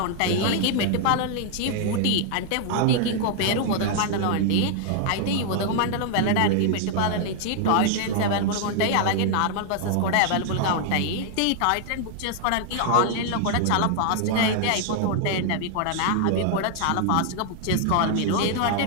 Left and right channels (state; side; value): different; both; correlation 0.00